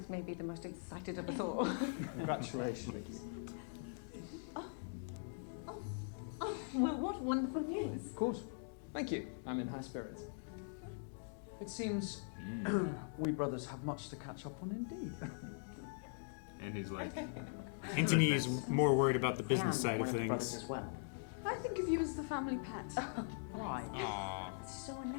may be the most excited of us all. Congratulations. Well, what wonderful news. Of course. Thank you. I'm in high spirits. It seems we brothers have much to catch up on indeed. And he's like... Anthony is more worried about the business side of things. As well. I think of you as the family pet. Why? It's so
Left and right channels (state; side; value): silent; right; digital silence